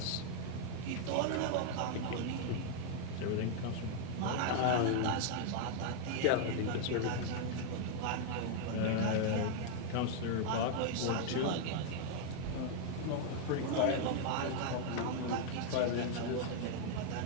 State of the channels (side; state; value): both; different; correlation 0.00